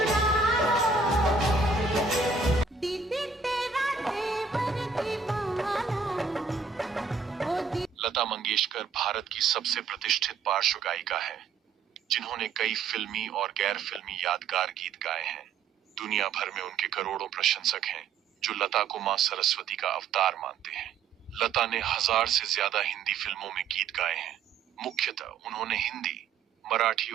दीदी तेरा तेवर दीवाना, ओ लता मंगेशकर भारत की सबसे प्रतिष्ठित पार्श्व गायिका है, जिन्होंने कई फिल्मी और गैर फिल्मी यादगार गीत गाए हैं। दुनिया भर में उनके करोड़ों प्रशंसक हैं, जो लता को मां सरस्वती का अवतार मानते हैं। लता ने 1000 से ज्यादा हिंदी फिल्मों में गीत गाए हैं। मुख्यतः उन्होंने हिंदी, मराठी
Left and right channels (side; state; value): left; quieter; 5.2 dB